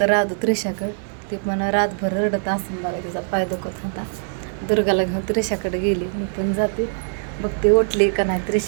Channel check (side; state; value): left; silent; digital silence